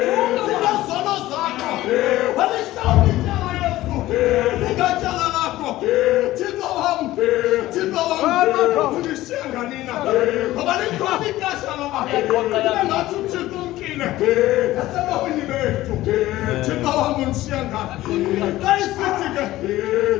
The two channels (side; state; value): right; quieter; 16.1 dB